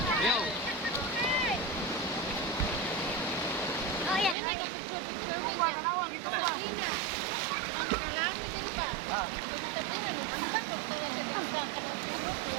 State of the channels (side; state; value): left; drops out; at 4.4 s